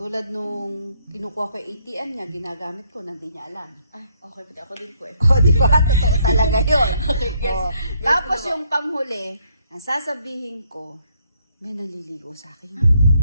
nung kinukuha ko yung ATM niya, ginagamit ko, hindi niya alam. Ay, okay po. Ako din po eh. O, di ba? Totoo talaga yun. Okay, yes. O, Yes, tapos ano ba? yung panghuli, ang sasabihin ko, may naliligo sa akin.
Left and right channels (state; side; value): inverted; both; correlation -0.69